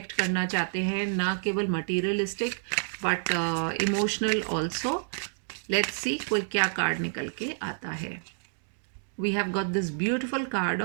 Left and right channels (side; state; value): left; silent; digital silence